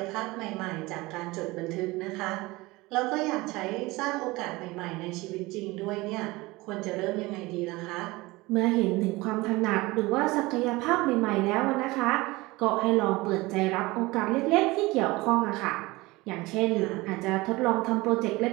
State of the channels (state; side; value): quieter; left; 21.5 dB